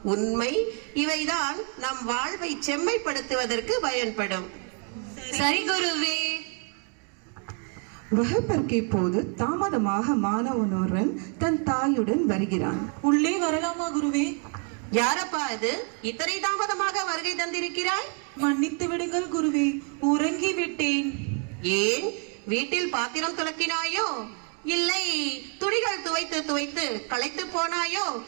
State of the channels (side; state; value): left; quieter; 39.2 dB